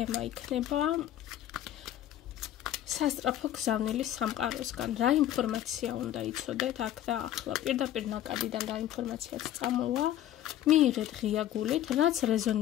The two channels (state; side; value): quieter; right; 12.1 dB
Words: იქნება სასწრაფო გზავნილი სამყაროსგან. რა ინფორმაცია უნდა იცოდეთ აქ და ახლა? პირდაპირ ნაკადიდან რა ინფორმაციაც წამოვა, მიიღეთ ღია გულით, რაც